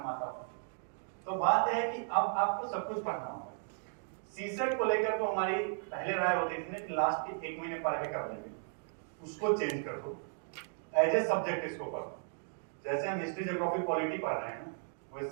आता हो। तो बात है कि अब आपको सब कुछ पढ़ना होगा। सीसेट को लेकर तो हमारी पहले राय होती थी कि लास्ट के 1 महीने पढ़ के कर लेंगे, उसको चेंज कर दो, एज ए सब्जेक्ट इसको पढ़ो। जैसे हम हिस्ट्री ज्योग्राफी पॉलिटी पढ़ रहे हैं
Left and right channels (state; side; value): silent; left; digital silence